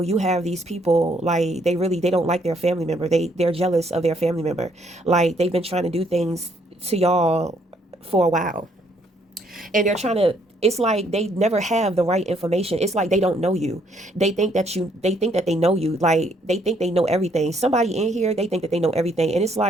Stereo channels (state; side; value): normal; both; correlation 0.68